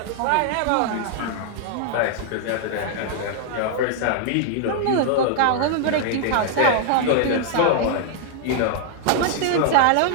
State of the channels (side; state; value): both; different; correlation 0.00